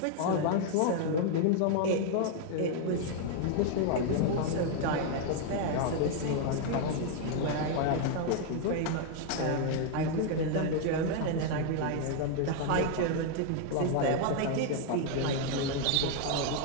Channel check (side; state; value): both; different; correlation 0.00